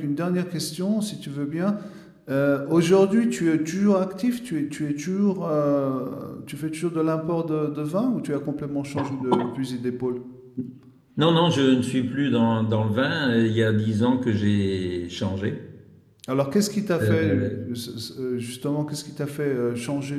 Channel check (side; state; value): both; identical; correlation 1.00